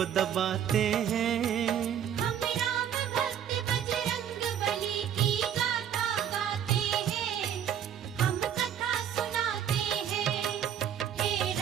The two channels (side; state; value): left; quieter; 9.3 dB